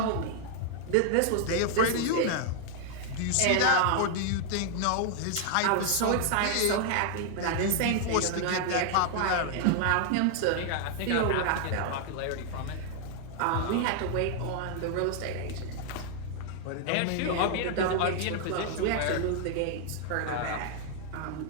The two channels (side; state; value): both; different; correlation 0.00